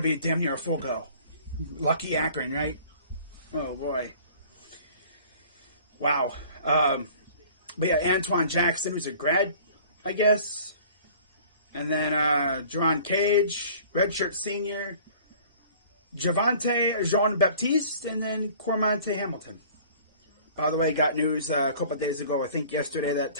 be damn near a full go. Lucky Akron, right? Oh, boy. Wow. But yeah, Antoine Jackson, who's a grad, I guess. And then Jerron Cage, redshirt senior. Javante Jean-Baptiste, and then Cormonte Hamilton. By the way, got news a couple of days ago, I think yesterday, that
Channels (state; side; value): inverted; both; correlation -0.49